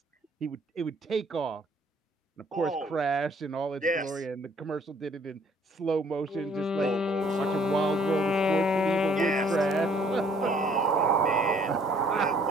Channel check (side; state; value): both; normal; correlation 0.60